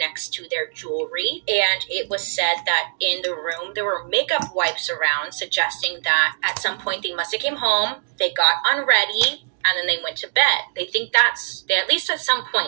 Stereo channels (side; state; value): left; silent; digital silence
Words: to their jewelry. And it was said that in the room, there were makeup wipes around, suggesting that at some point they must have came home, they got unready, and then they went to bed. They think they at least at some